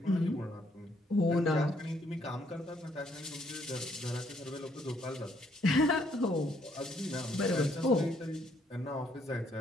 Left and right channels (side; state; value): both; normal; correlation 0.69